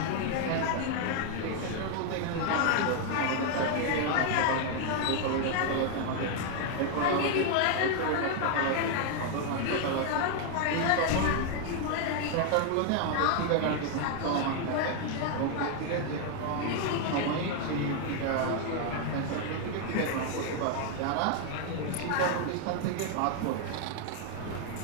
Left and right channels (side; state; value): both; different; correlation 0.00